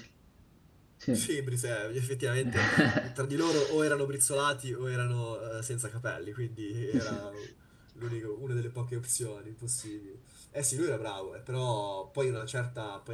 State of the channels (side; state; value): both; identical; correlation 1.00